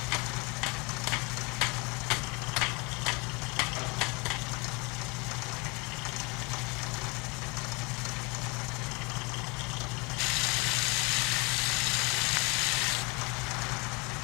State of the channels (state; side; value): quieter; right; 28.8 dB